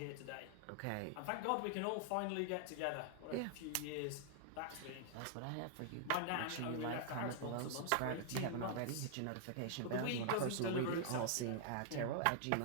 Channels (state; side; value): different; both; correlation -0.01